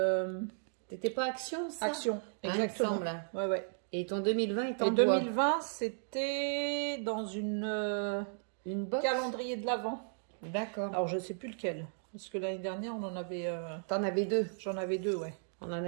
C'était pas Action, ça? Action, exactement. Ouais, ouais. Et ton 2020 est en bois. 2020, c'était dans une box calendrier de l'Avent. D'accord. Alors, je sais plus lequel. Parce que l'année dernière, on en avait... T'en avais deux? J'en avais deux, ouais. On en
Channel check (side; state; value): left; silent; digital silence